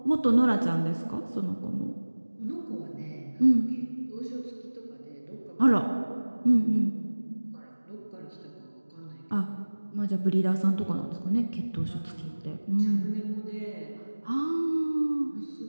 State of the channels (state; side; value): inverted; both; correlation -1.00